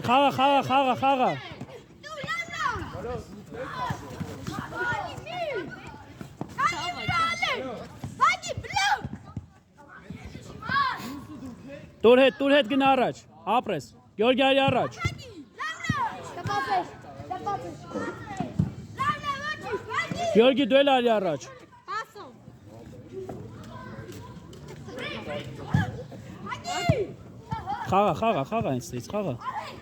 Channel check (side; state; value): both; identical; correlation 1.00